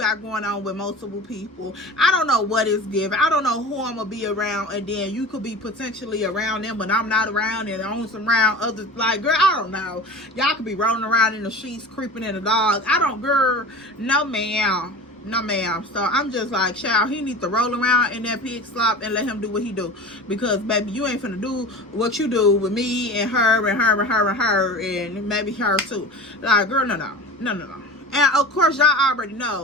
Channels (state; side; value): normal; both; correlation 0.35